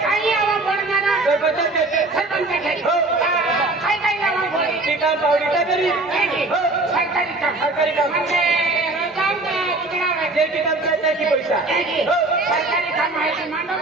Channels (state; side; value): quieter; left; 3.0 dB